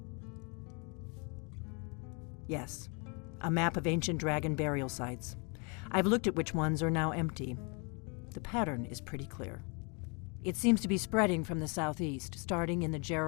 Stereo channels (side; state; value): right; quieter; 33.7 dB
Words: Yes, a map of ancient dragon burial sites. I've looked at which ones are now empty. The pattern is pretty clear. It seems to be spreading from the southeast, starting in the